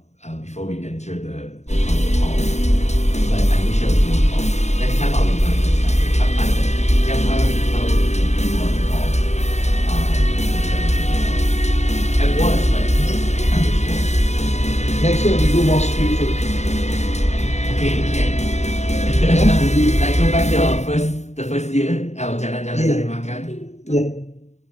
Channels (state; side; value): late; right; 0.33 ms